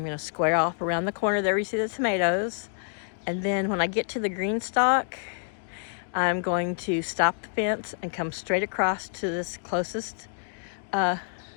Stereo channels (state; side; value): silent; right; digital silence